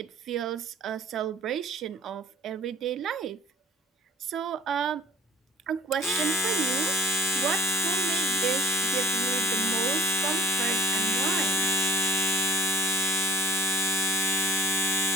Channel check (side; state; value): both; normal; correlation 0.52